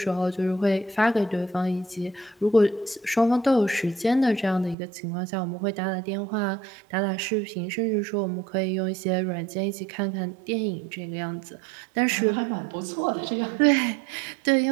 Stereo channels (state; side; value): drops out; left; at 4.8 s